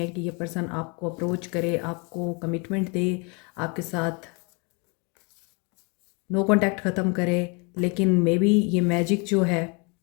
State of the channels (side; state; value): right; quieter; 32.2 dB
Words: कि ये पर्सन आपको अप्रोच करे, आपको कमिटमेंट दे, आपके साथ नो कांटेक्ट ख़त्म करे। लेकिन मे बी ये मैजिक जो है